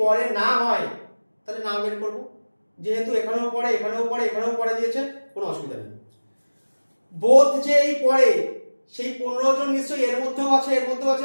পরে না হয় তাহলে না বের করবো। যেহেতু এখানেও পড়ে এখানেও পড়ে এখানেও পড়ে দিয়েছে, কোনো অসুবিধা নেই। বোথ যে এই পড়ে সেই 15 জন নিশ্চয়ই এর মধ্যেও আছে, এর মধ্যেও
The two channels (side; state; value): both; inverted; correlation -1.00